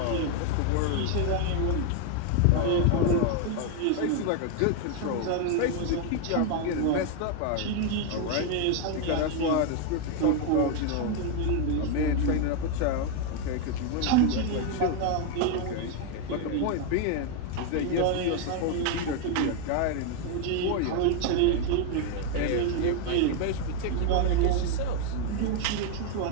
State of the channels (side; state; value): both; different; correlation 0.01